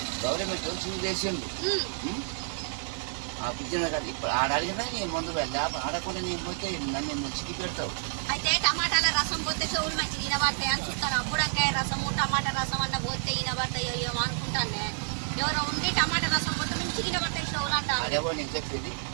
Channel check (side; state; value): left; silent; 58 dB below the other